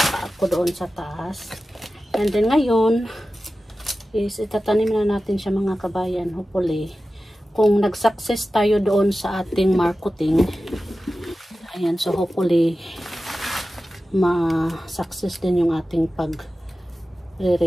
ako doon sa taas. And then ngayon is itatanim na natin siya mga kabayan. Hopefully, kung nag-success tayo doon sa ating marketing, ayan, so hopefully ma-success din yung ating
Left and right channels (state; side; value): normal; both; correlation 0.94